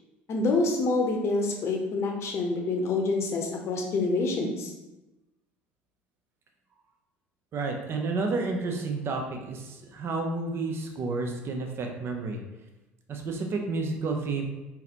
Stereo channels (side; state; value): both; normal; correlation 0.50